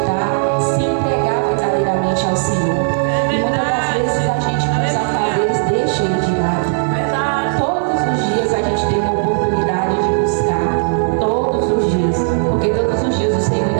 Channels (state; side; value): silent; left; digital silence